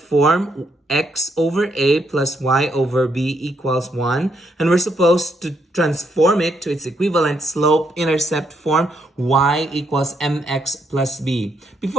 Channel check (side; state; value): both; normal; correlation 0.76